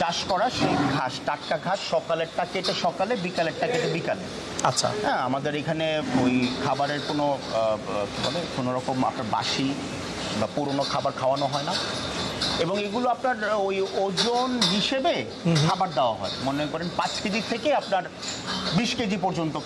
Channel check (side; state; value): both; identical; correlation 1.00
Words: করা, সেই ঘাস, টাটকা ঘাস, সকালেরটা কেটে সকালে, বিকালেরটা কেটে বিকালে। আচ্ছা, হ্যাঁ, আমাদের এখানে ওই খাবারের কোনো কী বলে কোনো রকম আপনার বাসি বা পুরনো খাবার খাওয়ানো হয় না, এবং এগুলো আপনার ওই ওজন হিসেবে খাবার দেওয়া হয়। মনে করেন 5 কেজি থেকে আপনার 20 কেজি পর্যন্ত